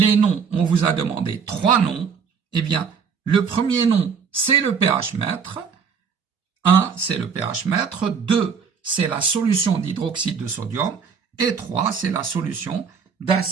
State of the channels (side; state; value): left; quieter; 6.3 dB